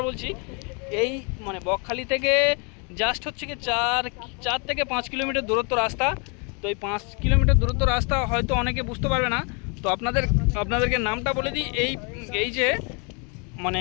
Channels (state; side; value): quieter; right; 34.3 dB